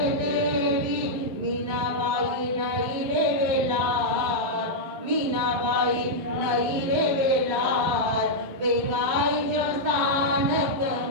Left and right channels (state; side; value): late; left; 12 ms